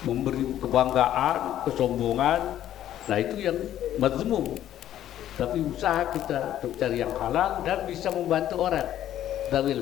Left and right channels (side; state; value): right; quieter; 11.9 dB